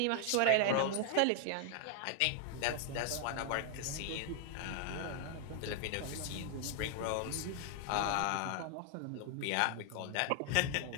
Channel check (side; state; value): both; different; correlation 0.00